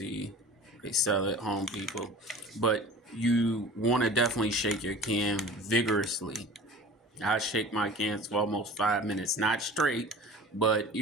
they sell at Home Depot. But you want to definitely shake your can vigorously. I shake my cans for almost 5 minutes, not straight, but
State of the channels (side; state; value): both; normal; correlation 0.41